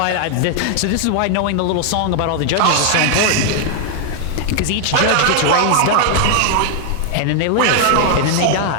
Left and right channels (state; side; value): different; both; correlation 0.00